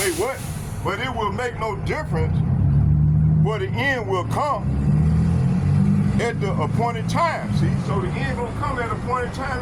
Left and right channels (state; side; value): identical; both; correlation 1.00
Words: what? But it will make no difference, for the end will come at the appointed time. See, so the end gonna come at the appointed